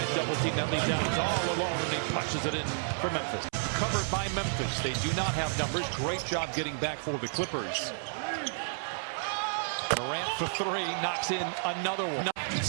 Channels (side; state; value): left; silent; 57 dB below the other